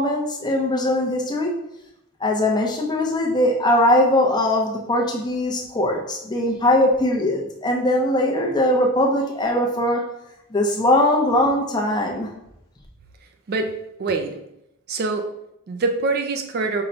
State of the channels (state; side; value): normal; both; correlation 0.28